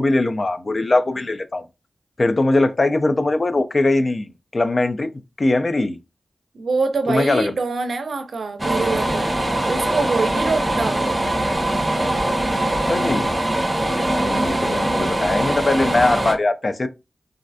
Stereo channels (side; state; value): both; normal; correlation 0.94